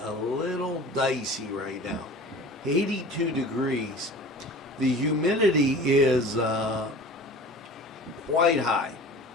a little dicey right now. 82 degrees. The humidity is quite high,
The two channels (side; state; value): both; normal; correlation 0.40